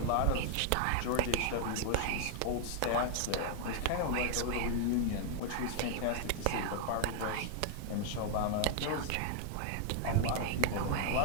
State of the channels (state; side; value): different; both; correlation -0.01